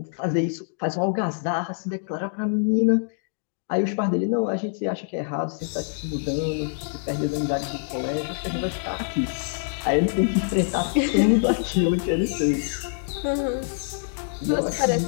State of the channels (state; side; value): silent; right; digital silence